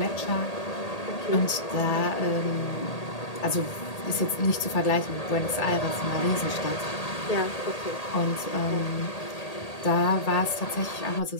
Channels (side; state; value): right; late; 1.8 ms